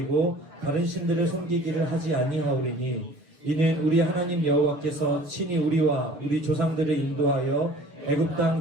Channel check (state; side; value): late; left; 6.8 ms